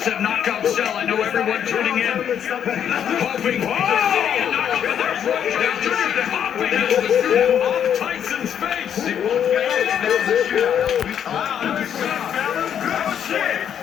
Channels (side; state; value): right; quieter; 8.9 dB